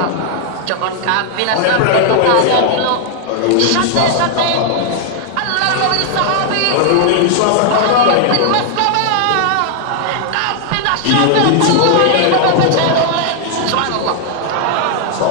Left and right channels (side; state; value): both; different; correlation 0.00